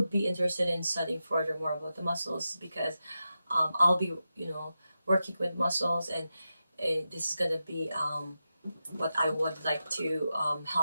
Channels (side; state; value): both; inverted; correlation -0.90